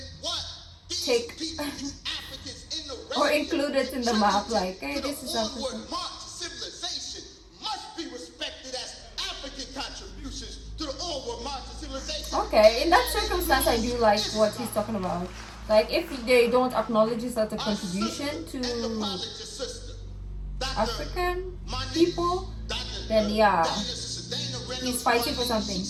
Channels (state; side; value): identical; both; correlation 1.00